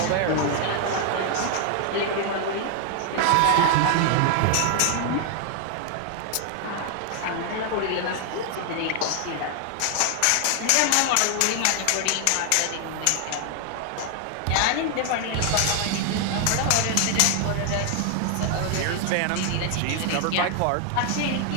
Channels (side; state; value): both; different; correlation 0.00